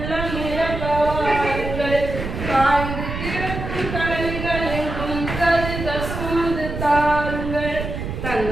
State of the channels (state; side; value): noise; right; rumble, 5 dB below the sound